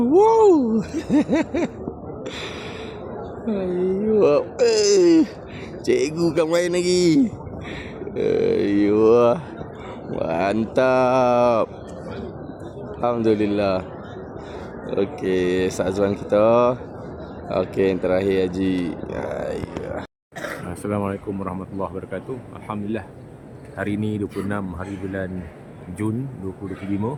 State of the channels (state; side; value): identical; both; correlation 1.00